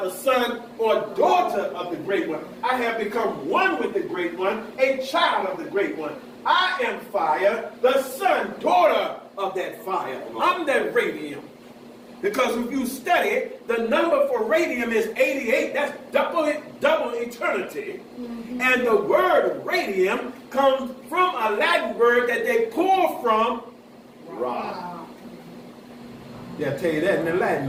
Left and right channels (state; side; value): identical; both; correlation 1.00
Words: the son or daughter of the great one. I have become one with the great one, a child of the great one. I am fire, the son, daughter of that fire. I'm that radium. Because if you study it, the number for radium is 88. That's double eternity. And the word radium comes from a Latin word that they pull from Ra. Yeah, I'll tell you that in the